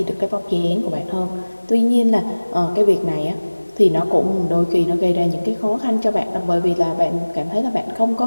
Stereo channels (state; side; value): inverted; both; correlation -1.00